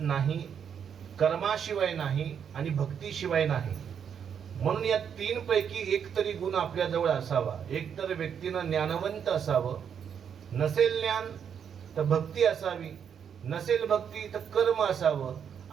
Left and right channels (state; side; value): quieter; left; 7.8 dB